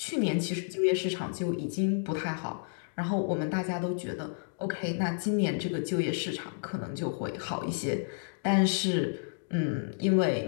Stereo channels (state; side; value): silent; right; digital silence